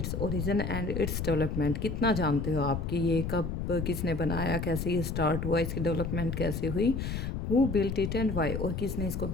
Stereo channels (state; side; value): noise; left; rumble, 3 dB below the sound